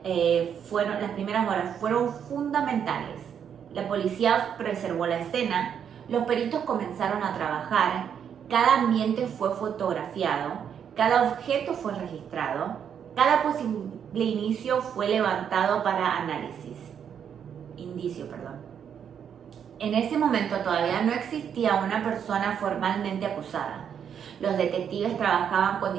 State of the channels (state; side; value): quieter; left; 8.1 dB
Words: fueron fundamentales. La policía preservó la escena, los peritos comenzaron a trabajar, cada ambiente fue fotografiado, cada objeto fue registrado, cada posible indicio fue levantado para indicio. En ese momento todavía no existía una persona formalmente acusada. Los detectives trabajaban con